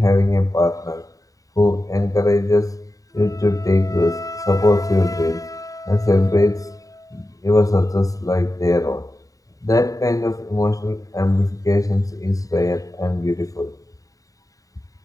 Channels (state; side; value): late; right; 0.16 ms